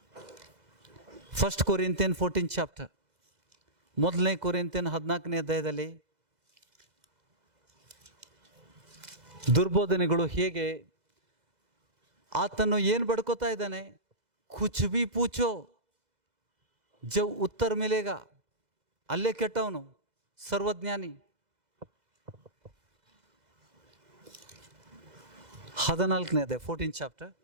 1 Corinthian 14th chapter, 1 Corinthian 14ನೇ ಅಧ್ಯಾಯದಲ್ಲಿ ದುರ್ಬೋಧನೆಗಳು ಹೇಗೆ, ಆತನು ಏನು ಬಡ್ಕೋತಾ ಇದ್ದಾನೆ? ಕುಚ್ ಬಿ ಪೂಚೋ ಜವ್ ಉತ್ತರ ಮಿಲೇಗ. ಅಲ್ಲೇ ಕೆಟ್ಟವನು, ಸರ್ವಜ್ಞಾನಿ. 14ನೇ ಅಧ್ಯಾಯ 14th chapter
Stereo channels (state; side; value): late; left; 2.0 ms